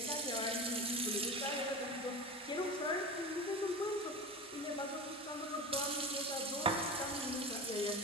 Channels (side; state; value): both; normal; correlation 0.29